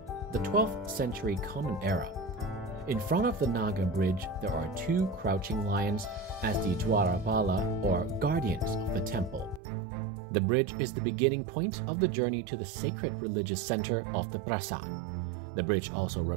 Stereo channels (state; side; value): drops out; left; at 9.6 s